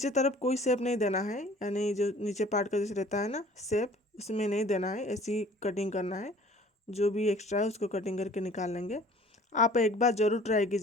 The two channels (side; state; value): both; normal; correlation 0.51